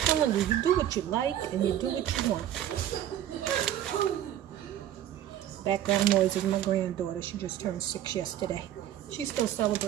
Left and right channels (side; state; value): left; quieter; 11.6 dB